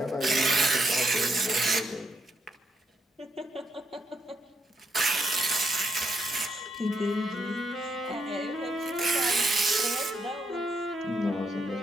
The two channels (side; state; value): both; normal; correlation 0.78